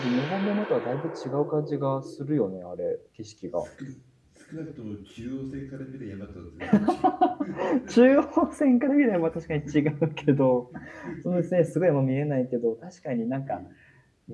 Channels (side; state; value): both; identical; correlation 1.00